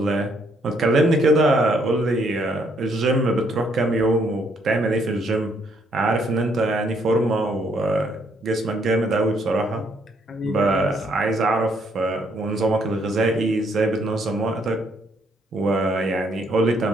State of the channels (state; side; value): normal; both; correlation 0.70